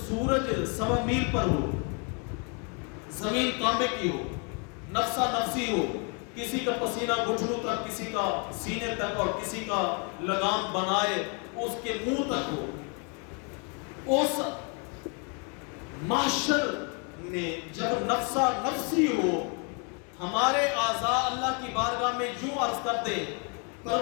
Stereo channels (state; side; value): quieter; right; 36.5 dB